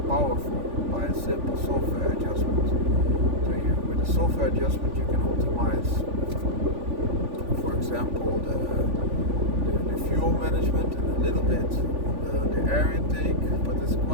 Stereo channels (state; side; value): late; left; 3.5 ms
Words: by a simple software adjustment. So with a software adjustment you can optimize, for example, the fuel management and a little bit on the air intake, but it's